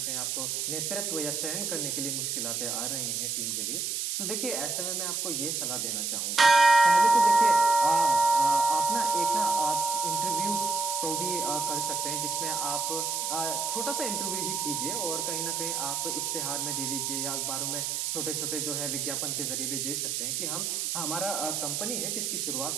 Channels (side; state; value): right; noise; hiss, 1 dB below the sound